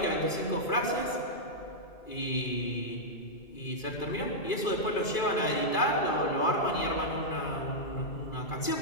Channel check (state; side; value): late; right; 2.3 ms